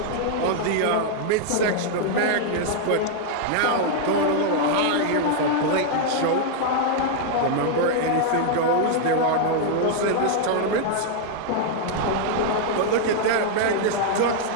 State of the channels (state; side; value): different; both; correlation 0.00